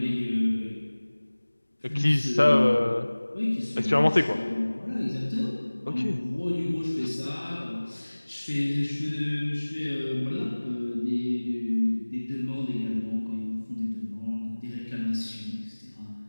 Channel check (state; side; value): inverted; both; correlation -1.00